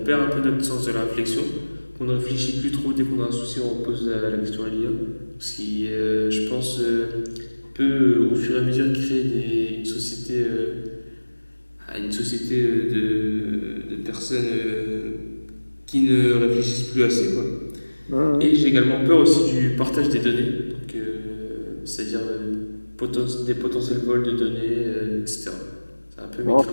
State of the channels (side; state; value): both; inverted; correlation -1.00